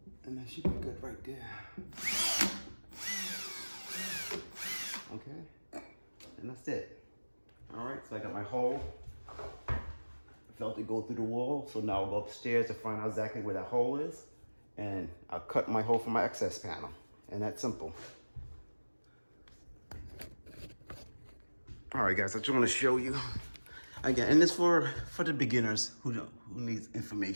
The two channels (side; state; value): both; inverted; correlation -1.00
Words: And that should be good right there. Okay, and that's it. All right, so I got my hole. I felt it go through the wall, so now I'll go upstairs to find out exactly where that hole is, and I'll cut my hole from my access panel, and that's simple. All right, guys, I just want to show you again, and it's for the beginners who needs